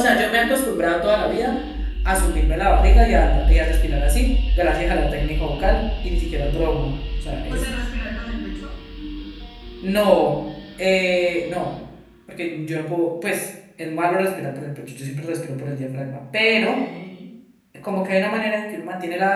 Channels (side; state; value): both; identical; correlation 1.00